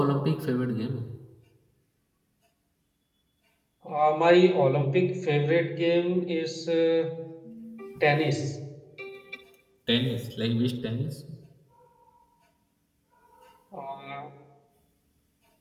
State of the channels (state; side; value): identical; both; correlation 1.00